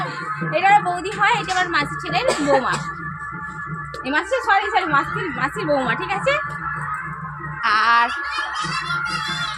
এটা বৌদি হয়, এটা আমার মাসি ছেলের বৌমা, এই মাসি সরি মাসির বৌমা, ঠিক আছে। আর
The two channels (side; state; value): both; identical; correlation 1.00